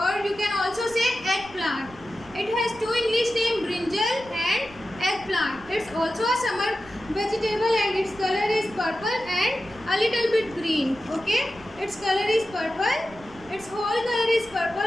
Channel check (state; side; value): noise; right; rumble, 21 dB below the sound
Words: or you can also say eggplant. It has two English names, brinjal and eggplant. It's also a summer vegetable and its color is purple and a little bit green. Okay, its color is purple. Its whole color is